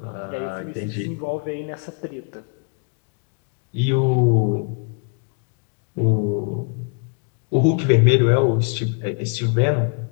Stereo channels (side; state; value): right; quieter; 39.7 dB